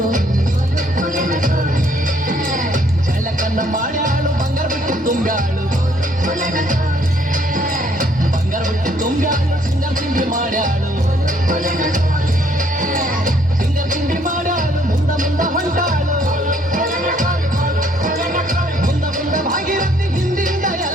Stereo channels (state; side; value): normal; both; correlation 0.66